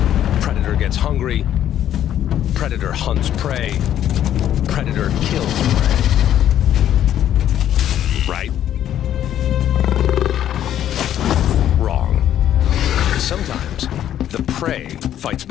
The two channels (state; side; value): quieter; right; 11.0 dB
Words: Predator gets hungry. Predator hunts prey. Predator kills prey. Right? Wrong. Sometimes the prey fights